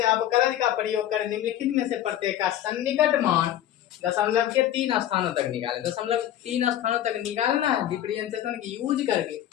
अवकलज का प्रयोग कर निम्नलिखित में से प्रत्येक का सन्निकट मान दशमलव के 3 स्थानों तक निकाले। दशमलव 3 स्थानों तक निकालना है डिफरेंशिएशन की यूज करके,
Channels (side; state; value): right; quieter; 11.9 dB